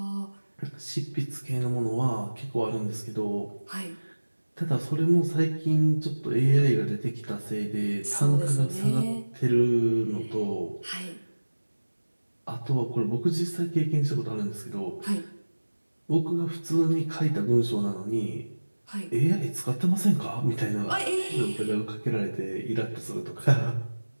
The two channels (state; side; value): inverted; both; correlation -1.00